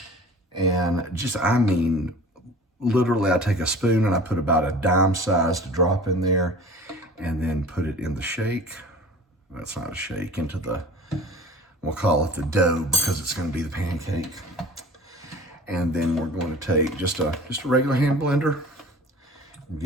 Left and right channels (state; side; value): normal; both; correlation 0.42